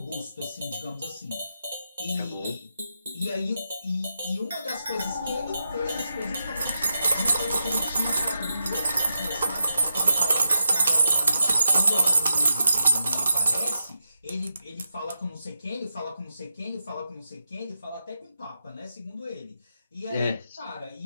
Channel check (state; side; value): inverted; both; correlation -0.85